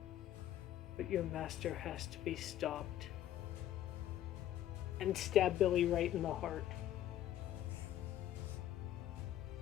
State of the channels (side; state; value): right; quieter; 12.3 dB